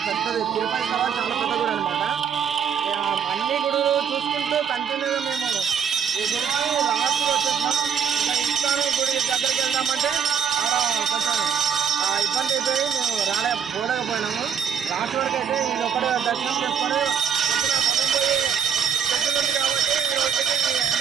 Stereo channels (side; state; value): left; quieter; 7.8 dB